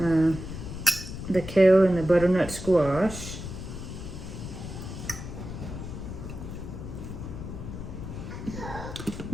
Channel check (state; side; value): noise; left; rumble, 8 dB below the sound